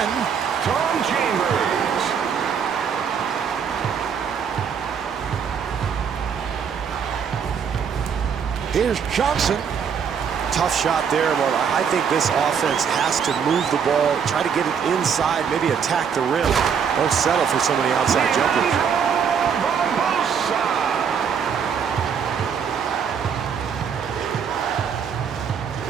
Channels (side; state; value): left; quieter; 7.0 dB